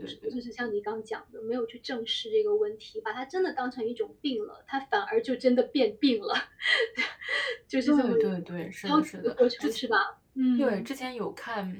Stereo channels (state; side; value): identical; both; correlation 1.00